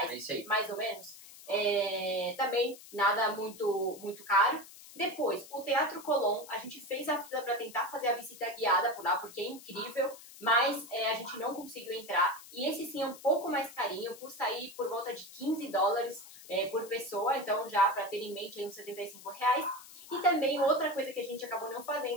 mais ou menos. Também nada muito, muito caro. Depois, o Teatro Colón, a gente fez a fila para tentar fazer a visita guiada por lá, porque é incrível, mas a gente não conseguiu entrar. E esse sim é um pouco mais carinho, custa aí por volta de 15 dólares por pessoa, então já para ter em mente aí uns 75 reais. E também outra coisa que a gente acabou não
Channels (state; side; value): noise; left; hiss, 18 dB below the sound